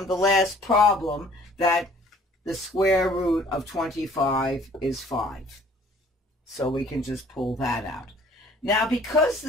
the last problem that the square root of 25 is 5. So we can just pull that out. Now, because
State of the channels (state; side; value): normal; both; correlation 0.55